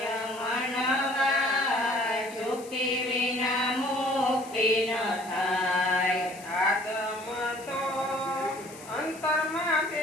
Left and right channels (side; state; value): left; noise; hiss, 18 dB below the sound